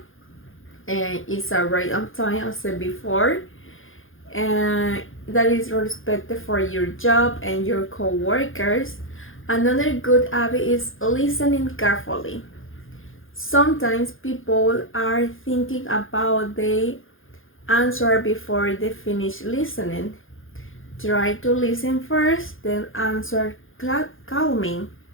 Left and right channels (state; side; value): late; right; 0.59 ms